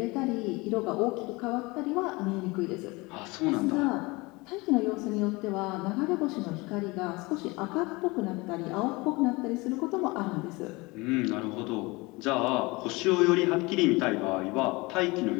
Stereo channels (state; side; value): quieter; right; 24.1 dB